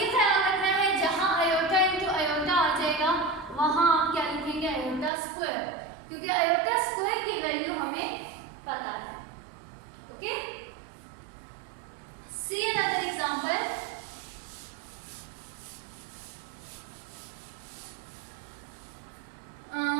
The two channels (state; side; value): drops out; left; at 5.1 s